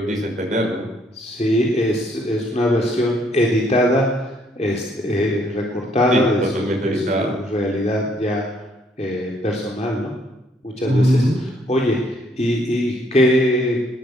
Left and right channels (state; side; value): normal; both; correlation 0.67